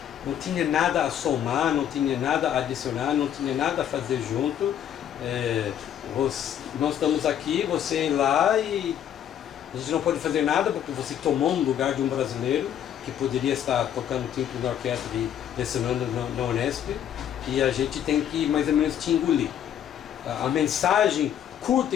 não tinha nada a somar, não tinha nada a adicionar, não tinha nada a fazer junto. Nós estamos aqui, você ir lá e a gente não pode fazer nada porque você tomou um lugar de um brasileiro que poderia estar tocando timbre na orquestra e lecionando na Unesp, e a gente tem que mais ou menos te engolir. A mensagem curta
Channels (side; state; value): right; quieter; 10.0 dB